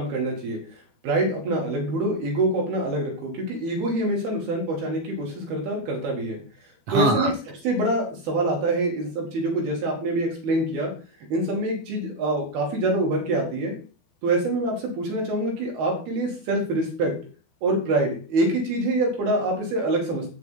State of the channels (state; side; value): late; left; 13 ms